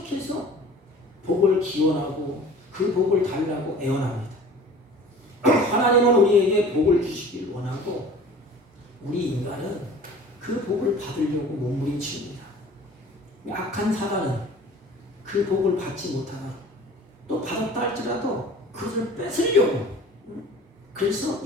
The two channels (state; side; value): normal; both; correlation 0.45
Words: 복을 기원하고 그 복을 달라고 애원합니다. 하나님은 우리에게 복을 주시길 원하고 우리 인간은 그 복을 받으려고 몸부림칩니다. 악한 사람은 그 복을 받지 못하고 또 받았다 할지라도 그것을 뺏으려고 그래서